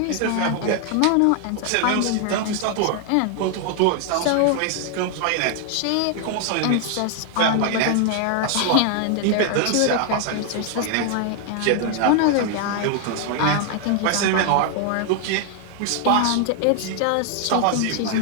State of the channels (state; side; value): different; both; correlation 0.00